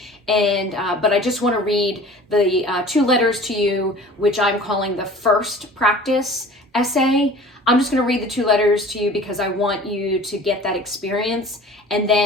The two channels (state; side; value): normal; both; correlation 0.44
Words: But I just want to read the 2 letters to you, which I'm calling the first practice essay. I'm just going to read the 2 letters to you because I want you to get that experience. And